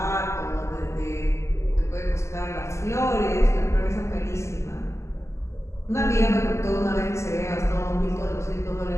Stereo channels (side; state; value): right; late; 0.13 ms